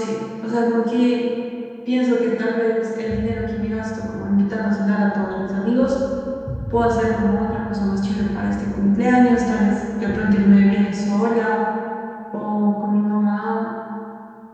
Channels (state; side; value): identical; both; correlation 1.00